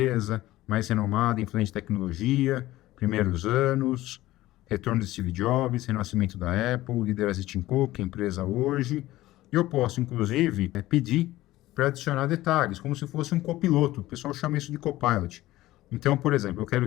mais renomada, influente em tecnologia, primeiros anos, retorno de Steve Jobs, renascimento da Apple, liderança de Tim Cook, empresa hoje. Eu posso, inclusive, pedir para adicionar detalhes, como se fosse um copiloto. O pessoal chama isso de copilot. Então, por exemplo, eu quero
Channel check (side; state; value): right; quieter; 16.5 dB